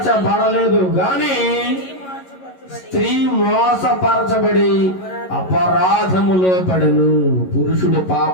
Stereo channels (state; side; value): late; right; 11 ms